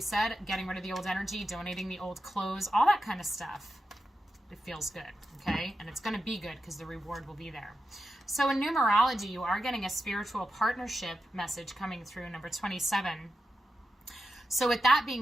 said, getting rid of the old energy, donating the old clothes, all that kind of stuff. It feels good, okay? And it's going to be good because the reward will be there. So in numerology, you are getting a spiritual partnership message coming through, number 27. So with that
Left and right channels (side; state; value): both; normal; correlation 0.89